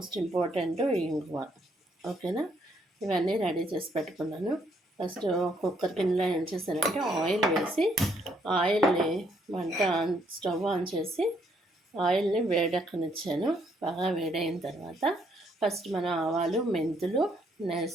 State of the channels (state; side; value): normal; both; correlation 0.70